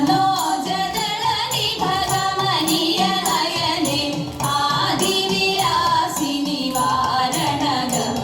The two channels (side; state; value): both; identical; correlation 1.00